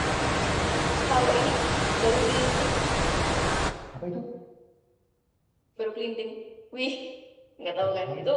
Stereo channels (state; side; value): identical; both; correlation 1.00